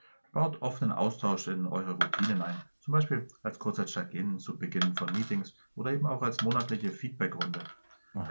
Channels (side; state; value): both; inverted; correlation -1.00